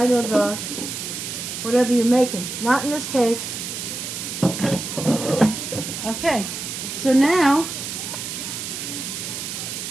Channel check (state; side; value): noise; right; hiss, 6 dB below the sound